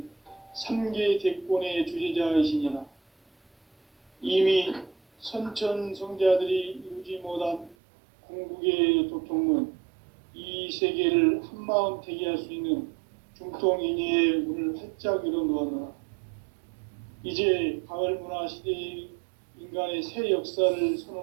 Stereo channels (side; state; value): left; drops out; at 7.8 s